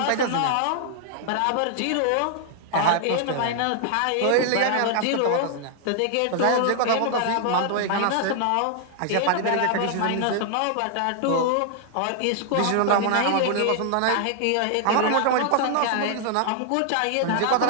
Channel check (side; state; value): both; different; correlation 0.00